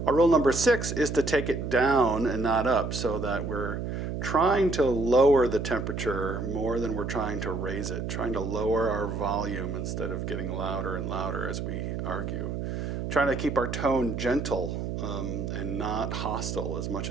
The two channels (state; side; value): noise; right; hum, 4 dB below the sound